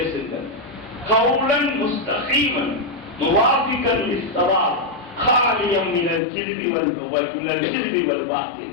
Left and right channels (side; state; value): right; drops out; at 6.2 s